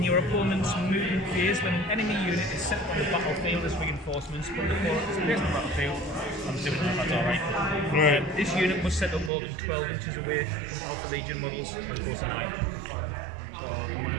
your opponent's movement phase when an enemy unit is set on the battlefield as reinforcements. Put the opponent's place on the battlefield. I'm assuming that's alright. right. This unit was set up more than 12 inches away from Alpha Legion models as opposed to 9. So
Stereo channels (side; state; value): left; drops out; at 9.3 s